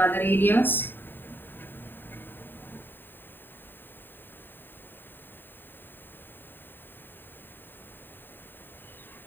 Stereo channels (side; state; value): right; late; 0.094 ms